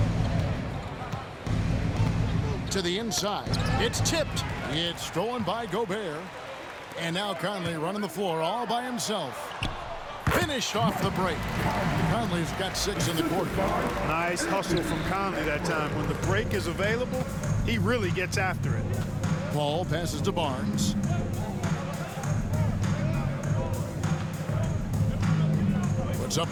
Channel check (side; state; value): both; identical; correlation 1.00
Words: To the inside. It's tipped. It's stolen by Gobert. And now Conley running the floor all by himself. Finished off the break. Conley's got 6 in the quarter. Nice hustle from Conley that time. When the break is available, he really gets after it. Paul passes to Barnes. Puts up